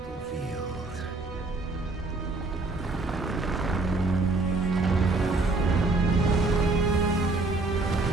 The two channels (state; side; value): quieter; left; 3.3 dB